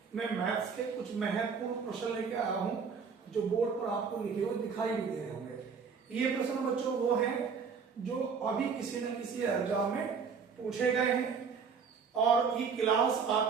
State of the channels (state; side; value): quieter; left; 5.8 dB